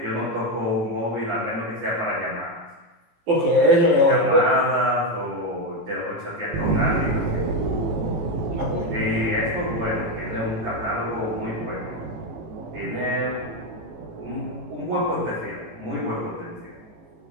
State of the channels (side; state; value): left; late; 18 ms